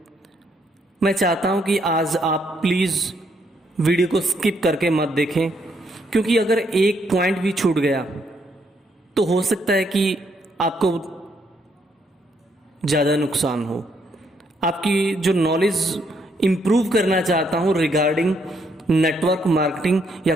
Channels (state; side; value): normal; both; correlation 0.73